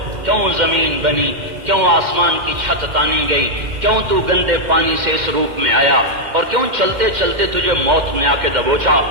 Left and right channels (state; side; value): late; left; 2.1 ms